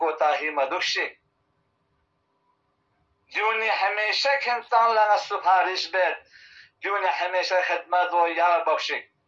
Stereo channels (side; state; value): both; identical; correlation 1.00